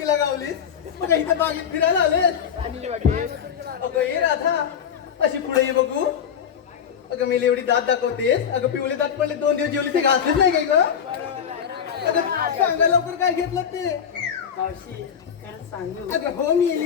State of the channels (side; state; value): right; quieter; 7.9 dB